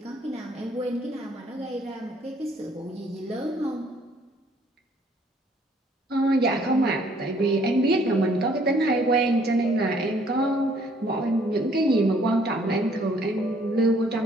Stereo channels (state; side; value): normal; both; correlation 0.62